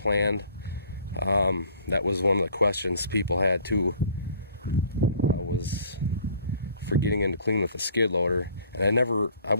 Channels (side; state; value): both; inverted; correlation -0.53